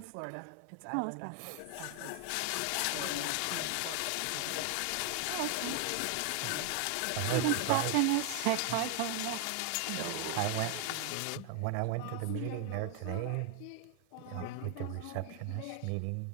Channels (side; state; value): both; different; correlation 0.01